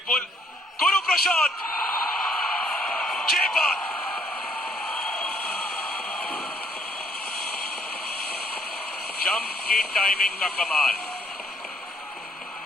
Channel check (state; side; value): normal; both; correlation 0.67